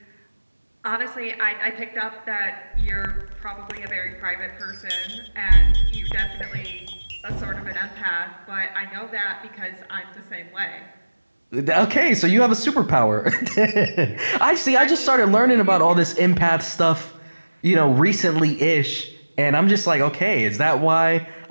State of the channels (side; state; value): both; inverted; correlation -1.00